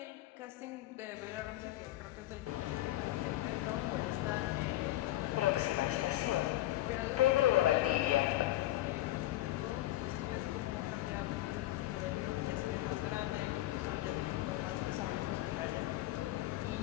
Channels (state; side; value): quieter; right; 15.7 dB